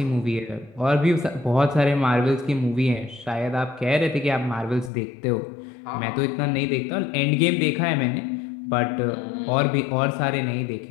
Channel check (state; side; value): drops out; right; at 4.9 s